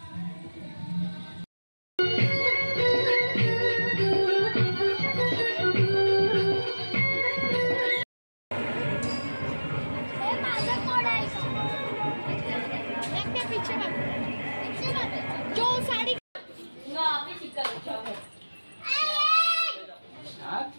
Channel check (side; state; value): both; inverted; correlation -1.00